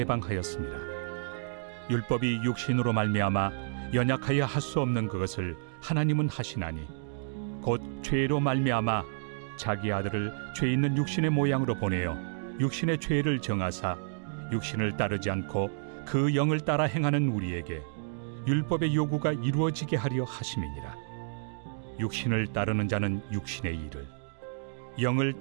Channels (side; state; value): left; silent; digital silence